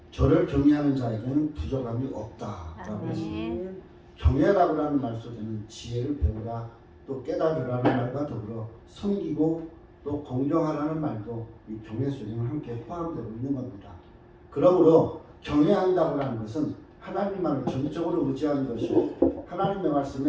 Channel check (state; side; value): identical; both; correlation 1.00